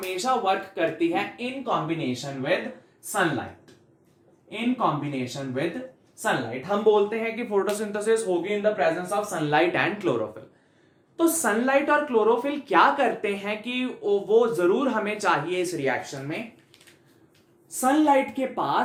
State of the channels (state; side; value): identical; both; correlation 1.00